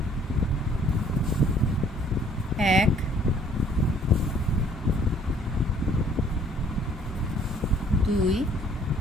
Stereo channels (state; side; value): normal; both; correlation 0.59